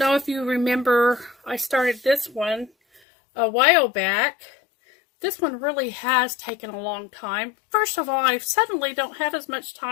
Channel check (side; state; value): right; drops out; at 3.0 s